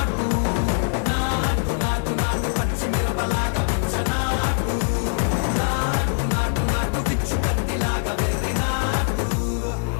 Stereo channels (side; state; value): right; silent; 55 dB below the other